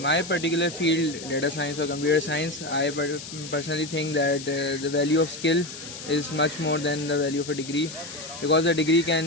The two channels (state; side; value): noise; left; hiss, 12 dB below the sound